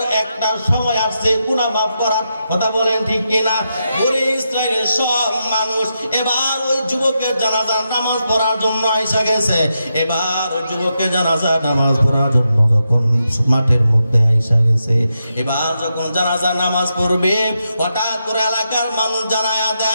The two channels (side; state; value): both; inverted; correlation -0.85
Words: একটা সময় আসছে গুনাহ মাফ করার, কথা বলেন ঠিক কিনা? বনি ইসরায়েলের সব মানুষ এবার ওই যুবকের জানাজার নামাজ পড়ার জন্য আইসা গেছে। এবার ওই যুবকের জানাজার নামাজ পড়ার জন্য যখন মাঠের মধ্যে আইসা গেছে, এবার যখন জানাজার নামাজ পড়বে হঠাৎ করে এলাকার মানুষ জানায়া